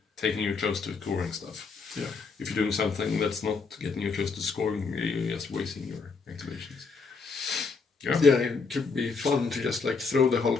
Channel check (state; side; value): quieter; right; 4.7 dB